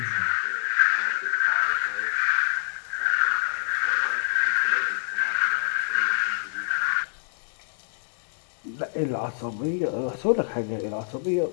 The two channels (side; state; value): right; silent; digital silence